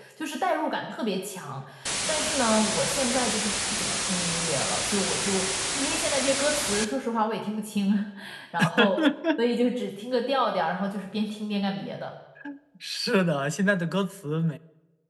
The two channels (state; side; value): identical; both; correlation 1.00